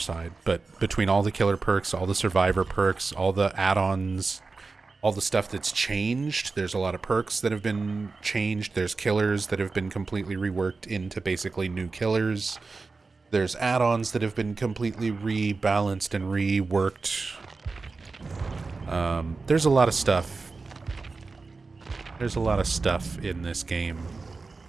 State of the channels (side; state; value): left; quieter; 4.0 dB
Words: But between all the killer perks, all the survivor perks, all the add-ons, all the stuff that's changed, there's a lot of perks that have been changed. There's killers that have been completely reworked into basically new killers. There's add-ons that have been completely rebalanced and reworked. There's a lot of stuff. There's a lot of stuff in this game.